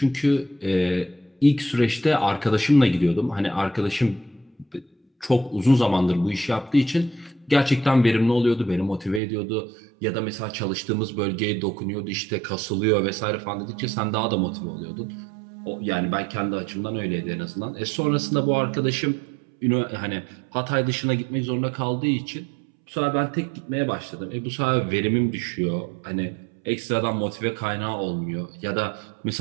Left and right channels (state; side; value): drops out; left; at 9.2 s